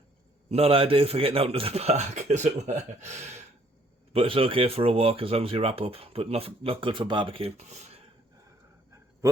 not ideal for getting out into the park, as it were. But it's okay for a walk as long as you wrap up. But not good for barbecue.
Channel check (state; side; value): normal; both; correlation 0.63